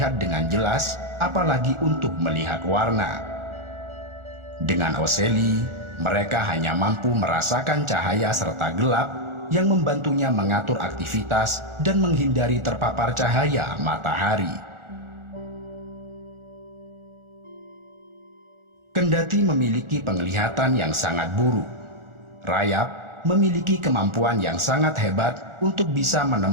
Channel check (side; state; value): left; late; 1.4 ms